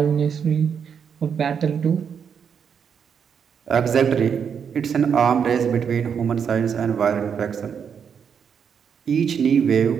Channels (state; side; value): quieter; left; 7.2 dB